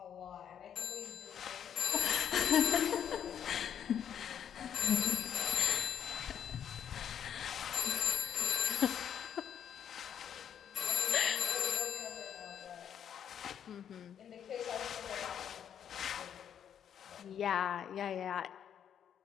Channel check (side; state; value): right; quieter; 9.0 dB